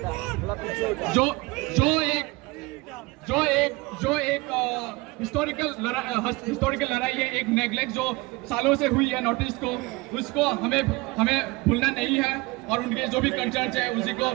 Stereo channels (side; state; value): left; quieter; 23.5 dB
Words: जो एक हिस्टोरिकल लड़ाई है, एक नेग्लेक्ट जो सालों से हुई है नॉर्थ ईस्ट को, उसको हमें भूलना नहीं है, और उनके जो भी कंसर्न्स है